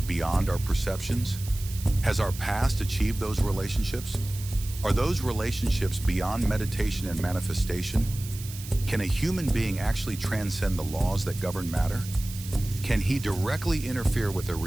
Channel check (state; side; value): noise; right; hiss, 13 dB below the sound